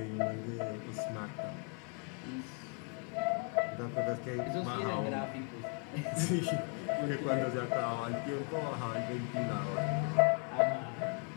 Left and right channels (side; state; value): right; quieter; 34.6 dB